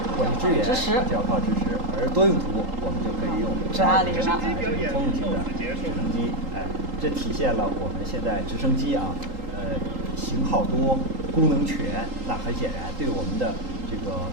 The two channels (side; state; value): left; late; 3.8 ms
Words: 或者支援就要靠直10，而多用途我们就可以用直20了。通用型的直升机，这体现了我们现在直升机啊，型号多、功能全，那很显然对我们的这个